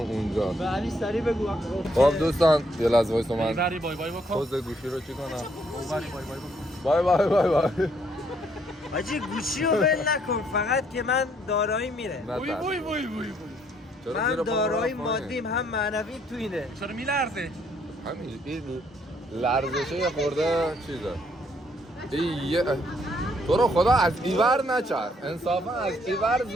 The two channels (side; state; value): both; normal; correlation 0.69